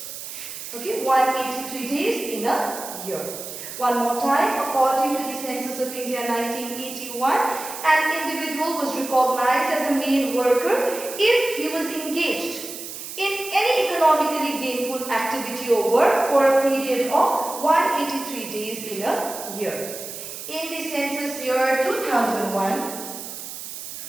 183 days in a year. One more time, according to the Census of India 1981, an individual was recognized as a main worker if he was engaged in any economically gainful activity or work for a period of 183 days in a year. In the census year 2001,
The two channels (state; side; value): noise; right; hiss, 10 dB below the sound